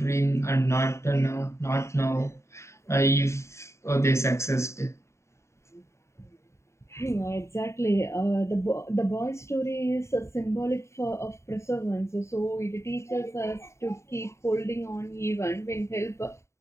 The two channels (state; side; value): late; right; 0.14 ms